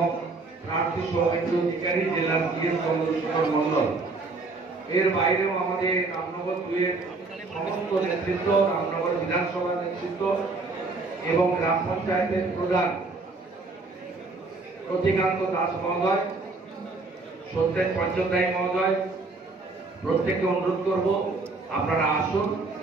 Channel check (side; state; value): left; quieter; 3.6 dB